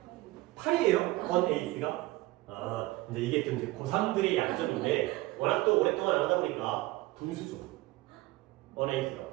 8이요. 8이에요? on 8th가? 이제 이게 좀 이제 고3들의 약점인데 워낙 또 오랫동안 안 하다 보니까 분수죠. on 8th가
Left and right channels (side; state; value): left; quieter; 19.3 dB